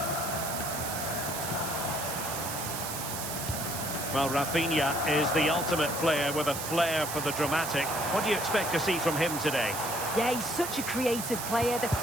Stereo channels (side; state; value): right; noise; hiss, 5 dB below the sound